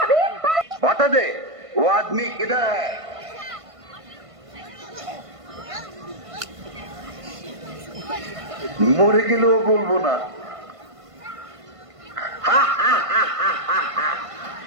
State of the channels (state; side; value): late; left; 1.5 ms